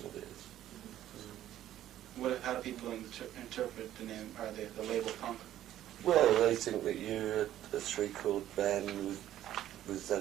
of it. How do people interpret the name, or the label punk? Well, they think that you're a three-chord band with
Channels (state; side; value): quieter; left; 12.5 dB